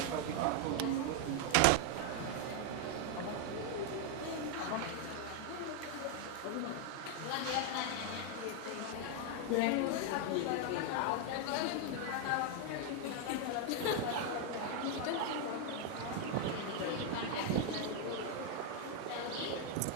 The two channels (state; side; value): different; both; correlation 0.01